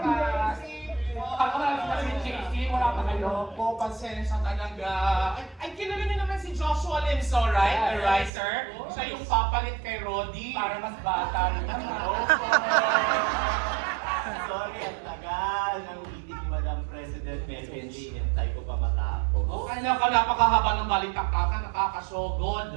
Ako na lang si JC, wala pa kayo. Po, pasensya talaga. Ay, kilala niyo naman si Joshua Limso, right? The writer. Siya yung papalit kay Roddy. Para mas bata rin naman. Sorry, ang tagal ng meeting ni Madam President Melvin Lee. Hintay ko pa matapos. Ay, napakahaba ng balitaktakan,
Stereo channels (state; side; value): drops out; left; at 8.3 s